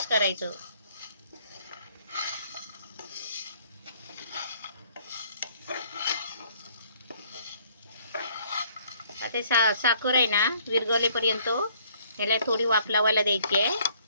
करायचं. आता साखर आहे ना विरघळेपर्यंत याला थोडी वाफ लावायला द्यायची आहे,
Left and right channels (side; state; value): both; inverted; correlation -0.62